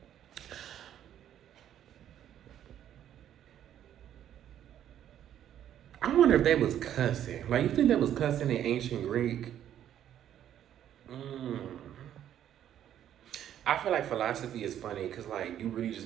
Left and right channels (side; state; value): left; quieter; 10.7 dB